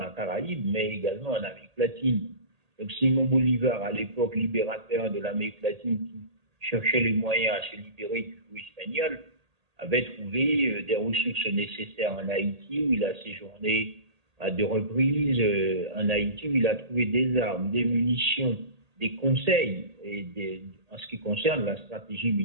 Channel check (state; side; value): late; left; 1.8 ms